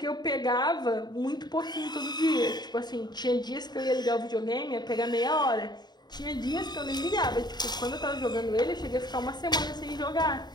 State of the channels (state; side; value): late; right; 0.20 ms